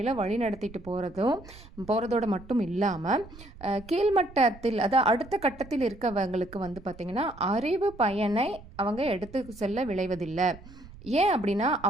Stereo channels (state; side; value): noise; right; rumble, 19 dB below the sound